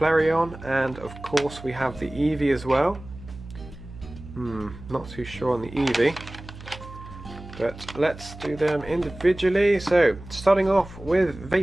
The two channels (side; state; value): right; noise; hum, 16 dB below the sound